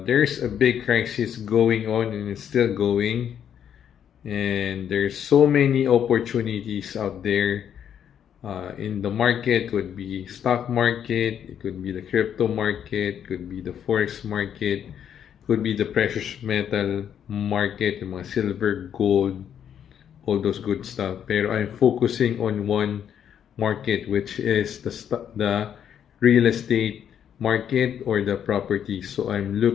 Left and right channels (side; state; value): right; quieter; 9.0 dB